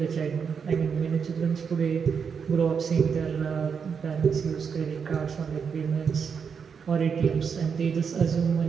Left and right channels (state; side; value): quieter; left; 6.4 dB